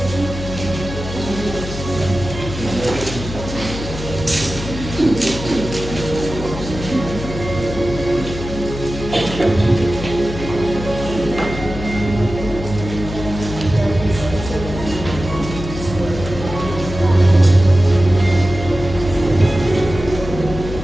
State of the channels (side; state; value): left; noise; hum, 8 dB below the sound